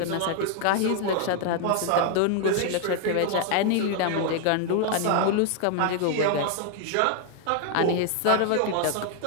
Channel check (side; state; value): both; different; correlation 0.00